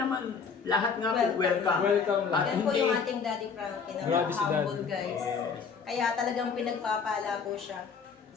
lahat nga po welcome. Welcome lang. At Yan po hindi, yung ating Daddy Frankie na Grabe si humble Daddy. guys. Yes. Kaya talagang pinagpapala po siya.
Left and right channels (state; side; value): quieter; right; 5.7 dB